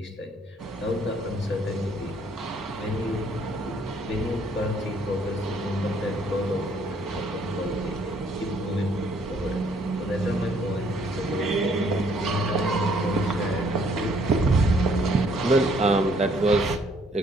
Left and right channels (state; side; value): normal; both; correlation 0.65